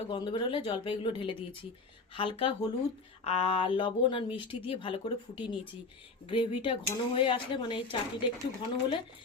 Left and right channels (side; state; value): right; quieter; 3.9 dB